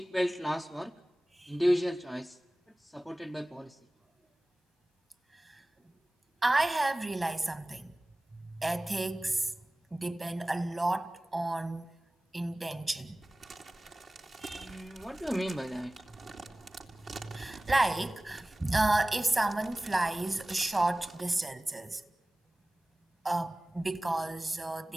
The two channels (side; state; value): both; normal; correlation 0.98